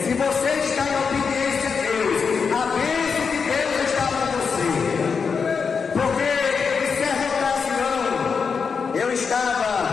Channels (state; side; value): quieter; right; 5.7 dB